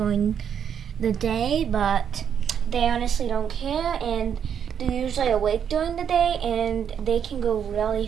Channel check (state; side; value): quieter; left; 8.2 dB